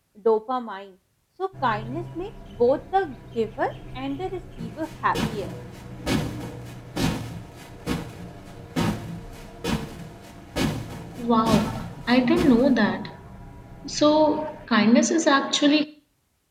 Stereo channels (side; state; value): both; identical; correlation 1.00